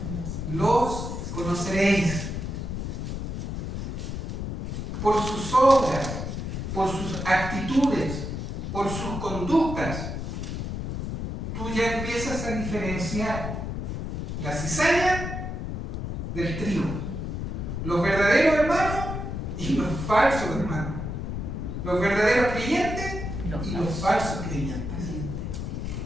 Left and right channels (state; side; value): noise; left; rumble, 4 dB below the sound